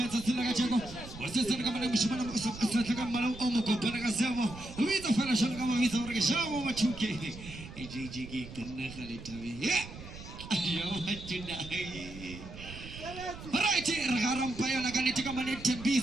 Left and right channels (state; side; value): noise; right; rumble, 13 dB below the sound